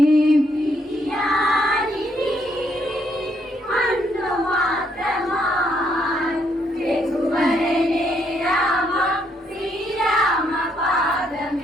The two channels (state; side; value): normal; both; correlation 0.73